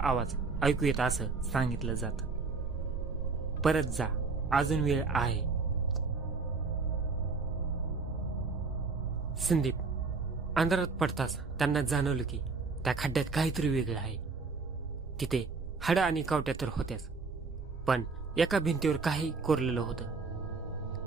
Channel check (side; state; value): left; quieter; 4.3 dB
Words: ऐकू येत असं सांगितलं जातं. परत जा, अजून वेळ आहे. संदीप अंधारात पडताच त्यांना जाणवलं की त्या खड्ड्यात काहीतरी वेगळं आहे. तिथे हाडं आणि कावट्या तर होत्याच, पण एका भिंतीवर काही कोरलेलं होतं.